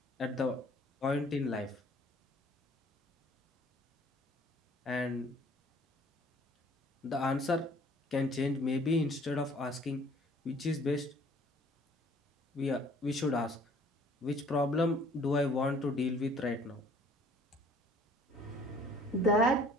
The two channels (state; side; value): normal; both; correlation 0.56